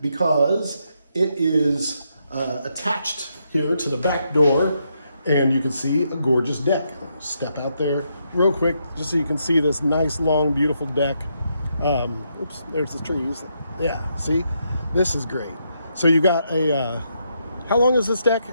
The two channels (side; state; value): both; inverted; correlation -0.79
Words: it is attached here to the back door. And you can see a gorgeous deck. Step out there real quick just so you can see this nice, long, beautiful deck. Oops, there's the trees. Yeah, see? This is great. So you got how long is this